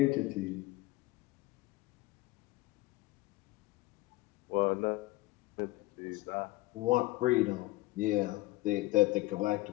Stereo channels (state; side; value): quieter; right; 19.8 dB